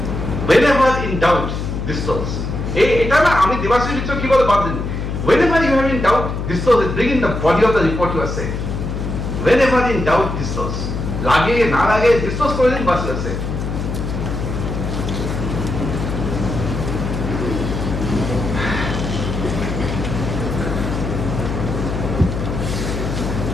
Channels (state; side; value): noise; left; hum, 4 dB below the sound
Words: Whenever in doubt, disclose. এটা না আমি দেবাশিস মিত্র কি বলে বাদ দিন। Whenever you are in doubt, disclose it. Bring in the body of the report you are saying. Whenever in doubt, disclose. লাগে না লাগে disclose করে দিন বাস আছে।